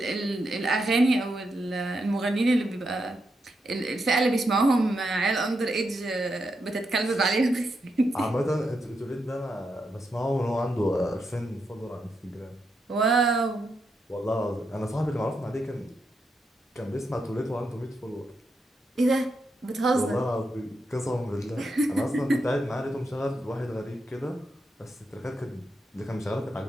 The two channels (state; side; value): normal; both; correlation 0.84